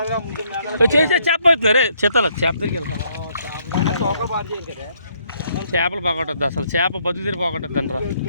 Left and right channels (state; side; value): inverted; both; correlation -0.70